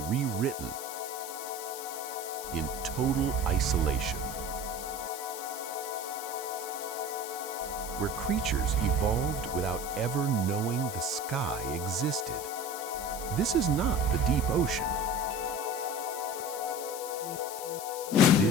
in total isolation, where creatures evolved without ever knowing the sky existed. This is not the deep ocean.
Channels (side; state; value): left; noise; hiss, 9 dB below the sound